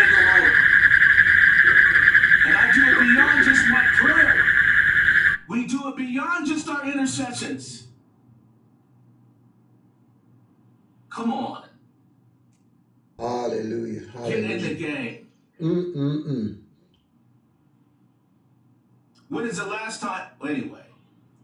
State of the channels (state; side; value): identical; both; correlation 1.00